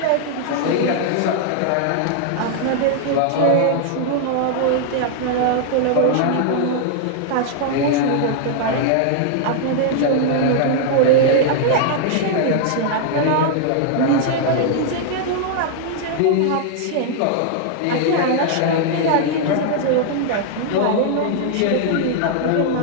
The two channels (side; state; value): both; different; correlation -0.01